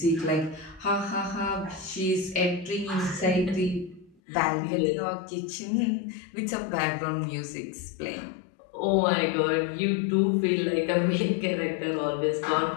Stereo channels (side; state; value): right; drops out; at 4.2 s